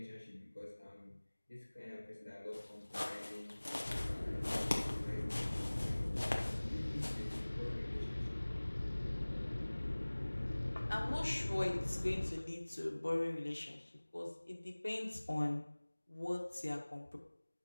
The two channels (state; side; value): inverted; both; correlation -1.00